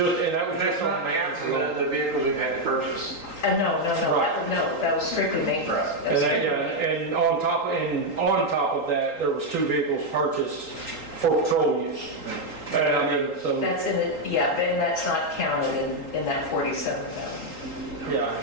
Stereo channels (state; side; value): late; right; 4.0 ms